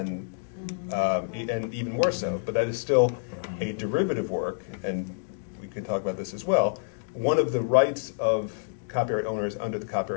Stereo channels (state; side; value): silent; right; digital silence